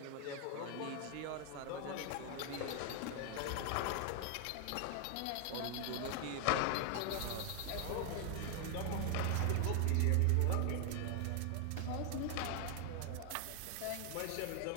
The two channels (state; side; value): different; both; correlation 0.00